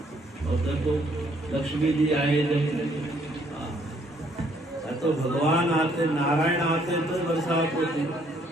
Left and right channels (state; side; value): normal; both; correlation 0.66